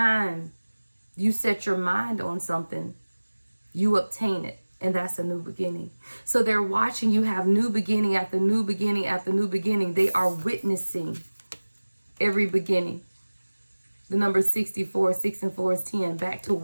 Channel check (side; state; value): both; inverted; correlation -1.00